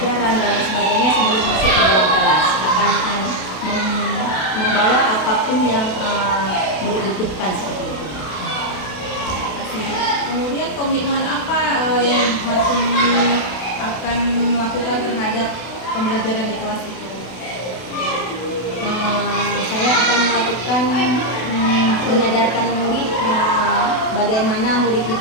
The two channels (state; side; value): late; right; 32 ms